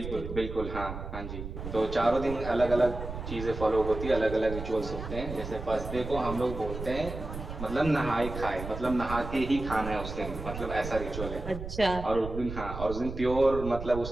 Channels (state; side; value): noise; right; rumble, 8 dB below the sound